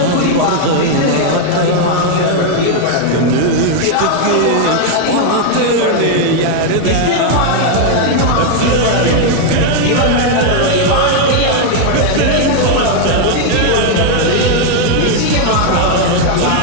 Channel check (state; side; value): different; both; correlation 0.00